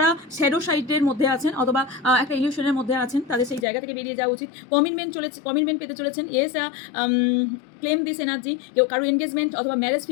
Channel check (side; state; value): right; drops out; at 3.7 s